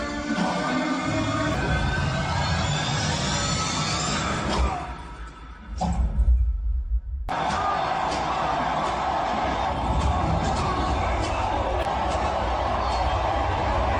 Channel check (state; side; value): identical; both; correlation 1.00